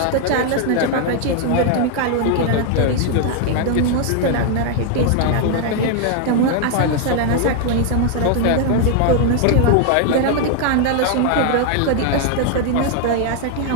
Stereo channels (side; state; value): both; different; correlation 0.00